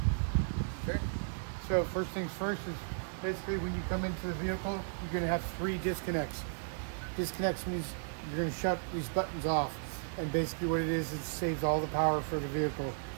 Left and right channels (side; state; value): left; silent; digital silence